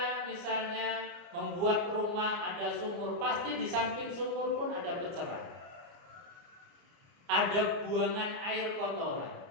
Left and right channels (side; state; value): left; late; 29 ms